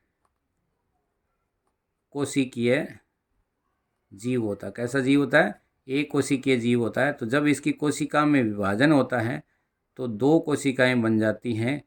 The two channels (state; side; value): identical; both; correlation 1.00